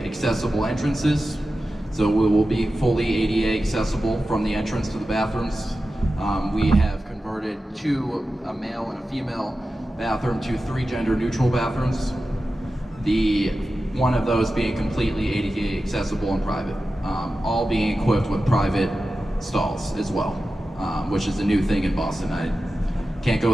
accessible entrances. So we will be fully ADA accessible from the entrance to the bathrooms. We have converted a male and a female bathroom to 3 gender neutral bathrooms. One of those being completely ADA accessible and private. All being equipped with private stalls as well, which is a new thing in Boston. I can't go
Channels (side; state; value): both; normal; correlation 0.93